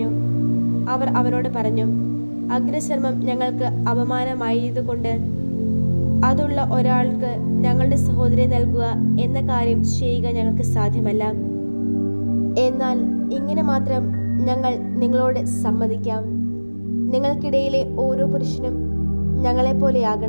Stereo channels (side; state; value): both; inverted; correlation -1.00